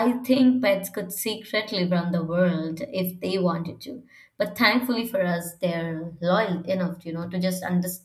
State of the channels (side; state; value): both; identical; correlation 1.00